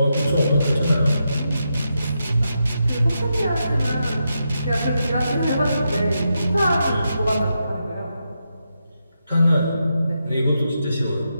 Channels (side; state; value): both; inverted; correlation -0.85